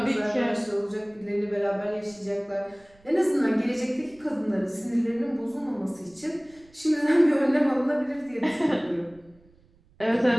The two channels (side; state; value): right; noise; rumble, 30 dB below the sound